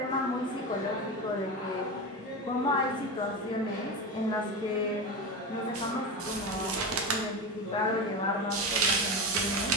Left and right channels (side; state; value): both; normal; correlation 0.21